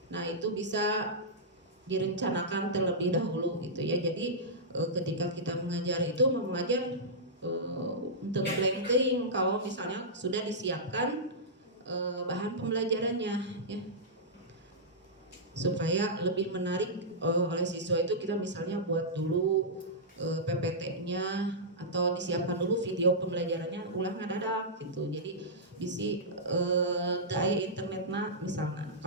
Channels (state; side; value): normal; both; correlation -0.13